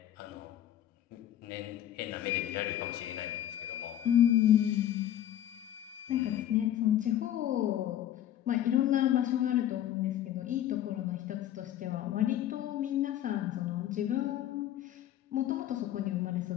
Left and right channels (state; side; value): quieter; right; 11.8 dB